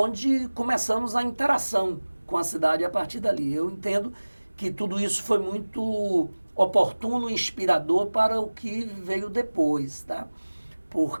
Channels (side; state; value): both; inverted; correlation -1.00